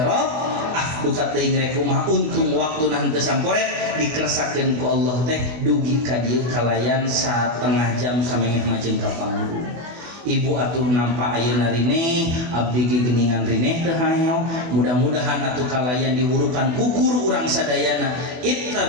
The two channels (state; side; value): late; left; 24 ms